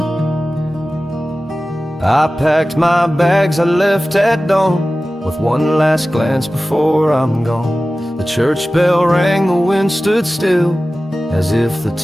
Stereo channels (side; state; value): both; normal; correlation 0.96